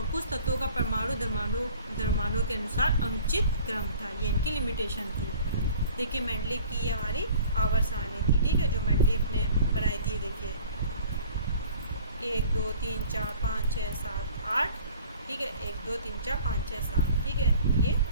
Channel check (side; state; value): both; inverted; correlation -0.47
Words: कुछ तत्वों का परमाणु द्रव्यमानों के अनुसार अनुचित क्रम था। ये इनकी लिमिटेशन थी। देखिए मेंडलीव की ये हमारी आवर्त सारणी थी, ठीक है, जो मेंडलीव ने बनाई थी। देखिए 1 2 3 4 5 6 7 8, ठीक है, 1 2 3 4 5 6 7, ठीक है, ये